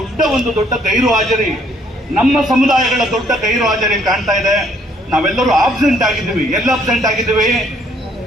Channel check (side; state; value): both; normal; correlation 0.65